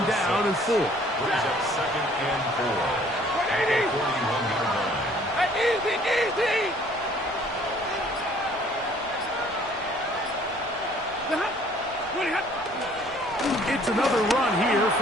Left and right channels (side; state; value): right; noise; rumble, 22 dB below the sound